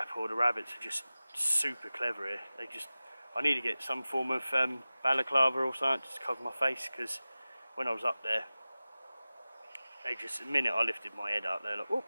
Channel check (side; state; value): both; inverted; correlation -0.97